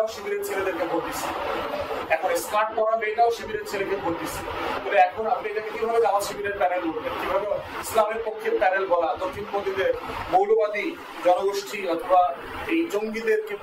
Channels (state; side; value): identical; both; correlation 1.00